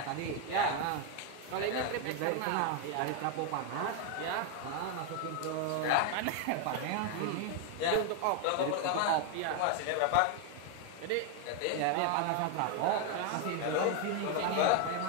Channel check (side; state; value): both; different; correlation 0.01